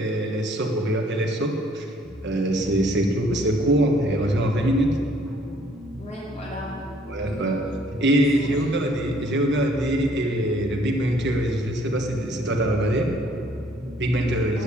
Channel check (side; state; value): both; normal; correlation 0.61